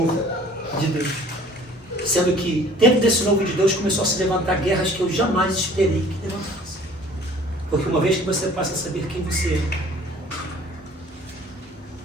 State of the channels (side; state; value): both; normal; correlation 0.52